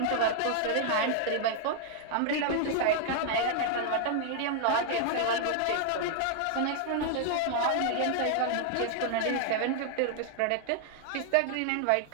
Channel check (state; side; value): different; both; correlation 0.00